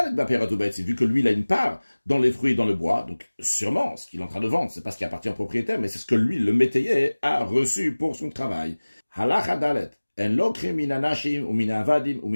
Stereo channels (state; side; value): inverted; both; correlation -1.00